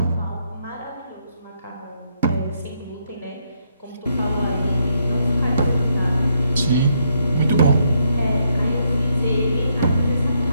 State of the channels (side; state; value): both; inverted; correlation -0.76